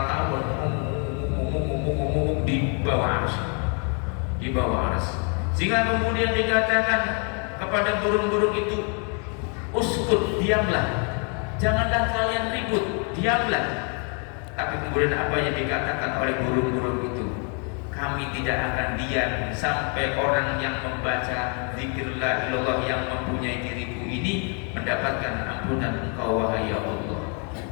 tawar di bawah arsy, di bawah arsy. Sehingga kemudian dikatakan kepada burung-burung itu, uskut, diamlah, janganlah kalian ribut, diamlah. Tapi kemudian apa yang dikatakan oleh burung-burung itu? Kami tidak akan diam sampai orang yang membaca zikir la ilallah yang mempunyai diriku ini mendapatkan ampunan Engkau wahai ya Allah.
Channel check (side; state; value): right; quieter; 38.6 dB